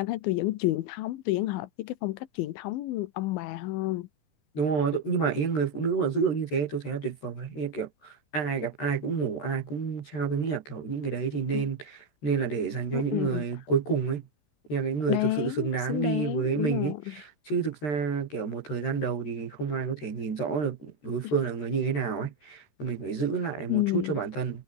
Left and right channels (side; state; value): right; late; 13 ms